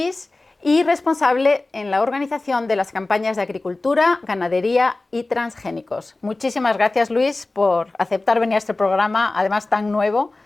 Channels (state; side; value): quieter; right; 3.1 dB